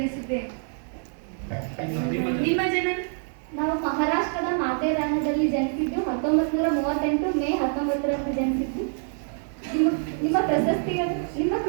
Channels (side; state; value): left; silent; 61 dB below the other